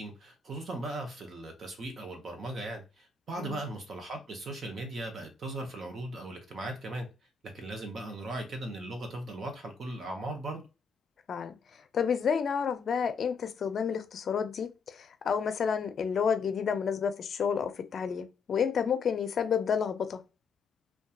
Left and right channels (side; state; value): right; quieter; 4.9 dB